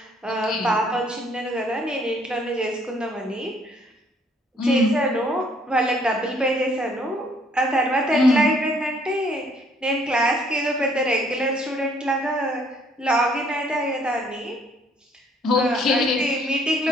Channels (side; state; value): both; normal; correlation 0.63